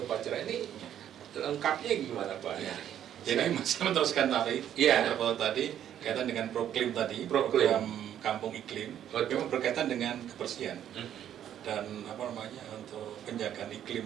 upacara. Ini lengkapnya gimana Pak? Jadi masih meneruskan tadi, tadi kaitan dengan proklim tadi, program kampung iklim, memang berkaitan dengan kebersihan dan untuk penjagaan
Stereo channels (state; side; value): quieter; left; 10.4 dB